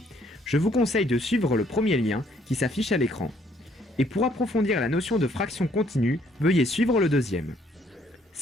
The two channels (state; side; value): normal; both; correlation 0.66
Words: je vous conseille de suivre le premier lien qui s'affiche à l'écran. Et pour approfondir la notion de fraction continue, veuillez suivre le deuxième.